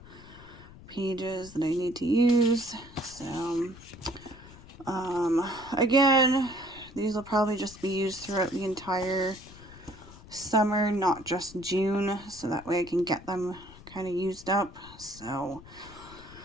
pages that I need to use. So again, these will probably just be used throughout the entire summer, not just June, so that way I can get them kind of used up. So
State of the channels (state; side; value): noise; left; rumble, 19 dB below the sound